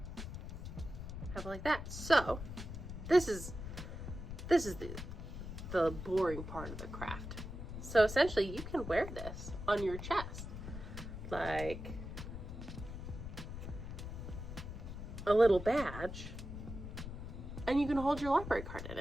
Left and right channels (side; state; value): left; noise; rumble, 8 dB below the sound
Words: have it like that. So this is the boring part of the craft. So essentially you can wear this on your chest like a little badge, and you can hold your library card in